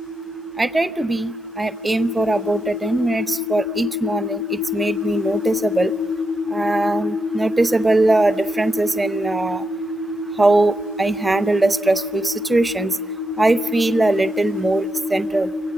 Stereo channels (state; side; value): normal; both; correlation 0.85